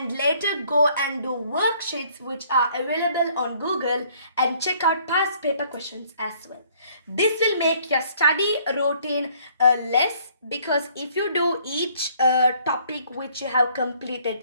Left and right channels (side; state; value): both; inverted; correlation -0.61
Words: later go and do worksheets which are available on Google, and check out past paper questions as well. This will make your study routine less, because if you do each topic which you have